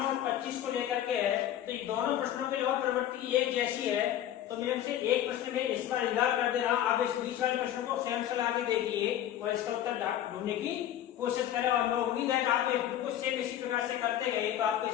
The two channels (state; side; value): quieter; right; 11.6 dB